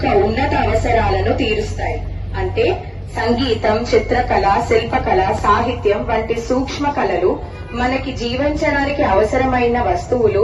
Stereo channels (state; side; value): identical; both; correlation 1.00